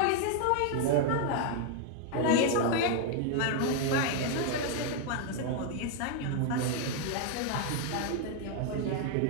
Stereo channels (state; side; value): different; both; correlation 0.00